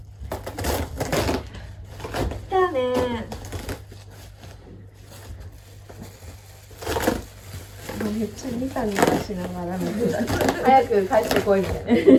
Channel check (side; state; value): both; identical; correlation 1.00